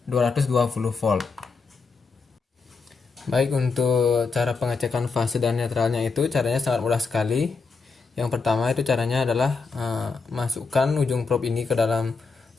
220 volt. Baik, untuk cara pengecekan fase dan netralnya itu caranya sangat mudah sekali. Yang pertama itu caranya adalah masukkan ujung probe ini ke dalam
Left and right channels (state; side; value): quieter; right; 4.5 dB